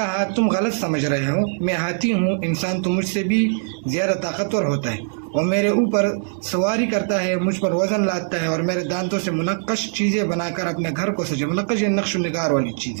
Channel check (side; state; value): left; silent; digital silence